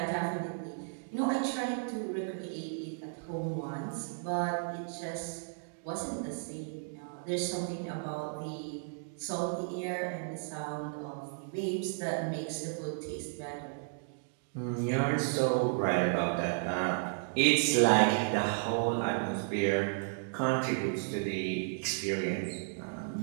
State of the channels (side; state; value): left; silent; digital silence